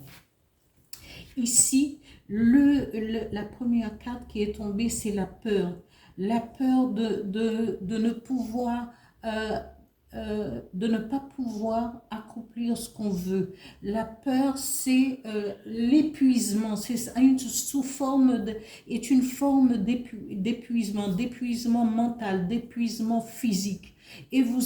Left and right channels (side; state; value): both; identical; correlation 1.00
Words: Ici, la première carte qui est tombée, c'est la peur. La peur de ne pouvoir, de ne pas pouvoir accomplir ce qu'on veut. La peur, c'est l'épuisement. C'est sous forme est une forme d'épuisement mental, d'épuisement physique. Et